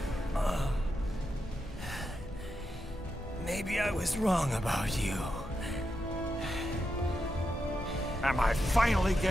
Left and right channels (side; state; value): both; normal; correlation 0.86